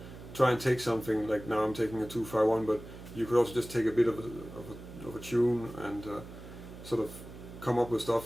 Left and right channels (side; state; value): right; noise; hum, 14 dB below the sound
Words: Try and take something like, now I'm taking a 2-5-1, but you could also just take a bit of a tune and sort of come up with